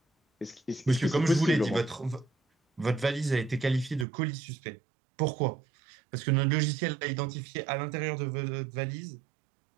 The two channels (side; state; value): left; drops out; at 4.0 s